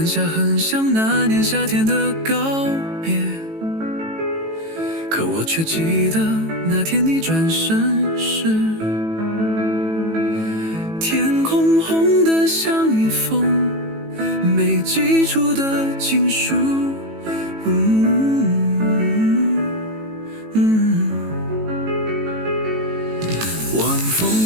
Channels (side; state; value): left; late; 18 ms